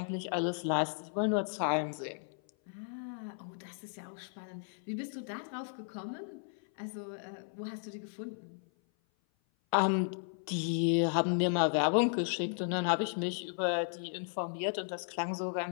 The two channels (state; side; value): silent; right; 55 dB below the other